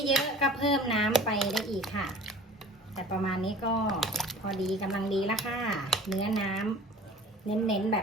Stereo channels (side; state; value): both; normal; correlation 0.43